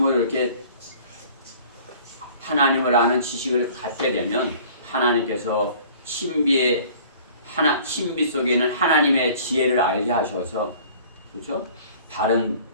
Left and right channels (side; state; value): both; inverted; correlation -0.49